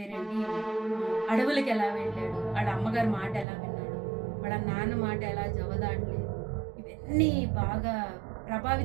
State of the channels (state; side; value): drops out; left; at 3.5 s